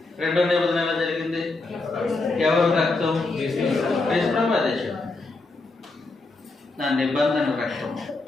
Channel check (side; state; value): right; quieter; 3.4 dB